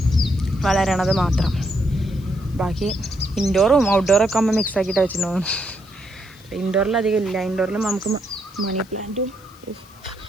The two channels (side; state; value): left; noise; hiss, 27 dB below the sound